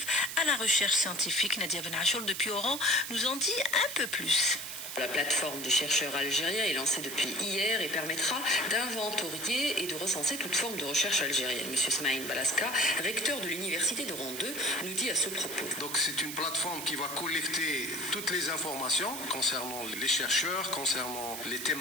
à la recherche scientifique. Nadia Benachoul depuis Oran nous en dit un peu plus. La plateforme du chercheur algérien est lancée depuis hier et permettra d'inventorier et de recenser toute forme de recherche algérienne. Monsieur Smaïn Balaska, recteur de l'université d'Oran 2, nous dit à ce propos. Donc c'est une plateforme qui va collecter toutes les informations concernant les chercheurs, concernant les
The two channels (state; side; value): noise; right; hiss, 7 dB below the sound